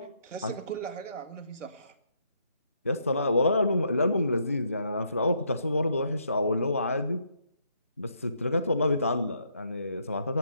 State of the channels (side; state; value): both; inverted; correlation -0.73